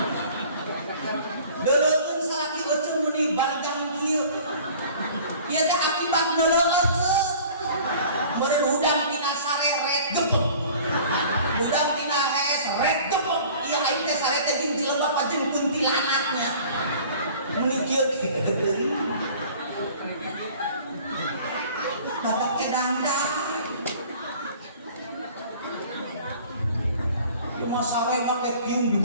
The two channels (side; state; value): both; inverted; correlation -0.47